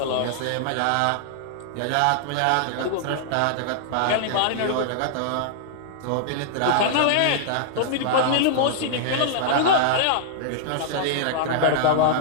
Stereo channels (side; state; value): both; different; correlation -0.01